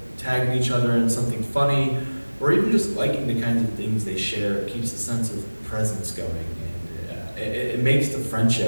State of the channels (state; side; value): inverted; both; correlation -1.00